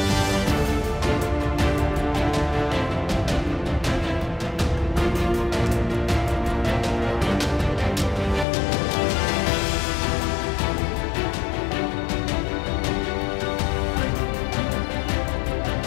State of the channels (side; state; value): right; drops out; at 8.5 s